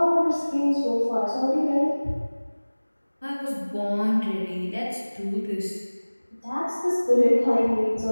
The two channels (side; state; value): both; inverted; correlation -1.00